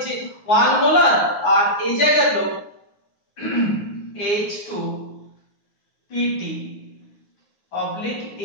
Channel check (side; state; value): right; late; 9.4 ms